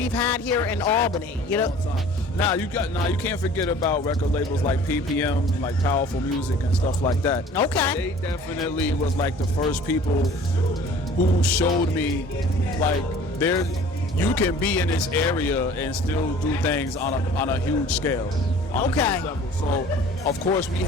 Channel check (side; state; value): both; normal; correlation 0.48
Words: had here in Albany. Now you can't forget about record labels like PPM, like Powerful Music and stuff like that. Okay. They definitely was like the first people who showed me, like, you can be in this area and still do things on a huge scale. Okay. So of course we